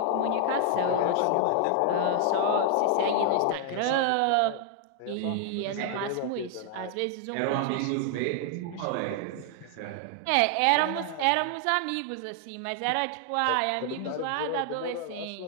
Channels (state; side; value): different; both; correlation 0.00